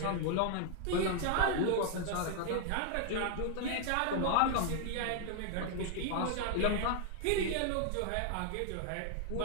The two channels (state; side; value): different; both; correlation 0.00